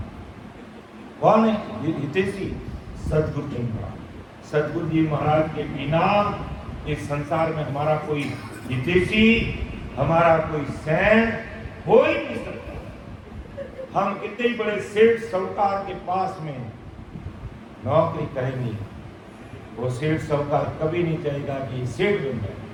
कौन है हितैषी? सदगुरु जी महाराज। सदगुरु जी महाराज के बिना इस संसार में हमारा कोई हितैषी, हमारा कोई सैन हो ही नहीं सकता। हम कितने बड़े सेठ साहूकार के पास में नौकरी करेंगे, वो सेठ साहूकार कभी नहीं चाहेगा कि सेठ बन जाए,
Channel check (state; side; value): identical; both; correlation 1.00